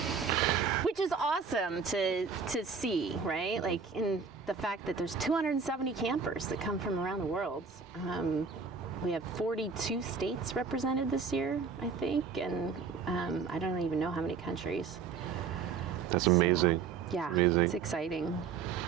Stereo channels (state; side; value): quieter; left; 5.6 dB